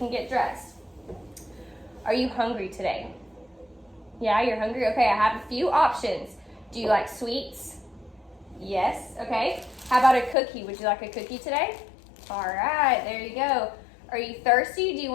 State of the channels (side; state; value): right; drops out; at 10.4 s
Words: get dressed. Are you hungry today? Yeah, you're hungry? Okay, I have a few options. Do you like sweets? Yes, okay. How about a cookie? Would you like a cookie today? All right, there you go. Are you thirsty? Do you